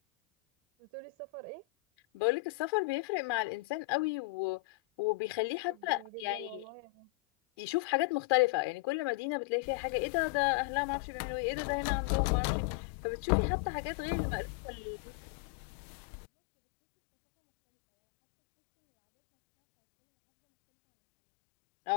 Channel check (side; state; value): right; drops out; at 9.2 s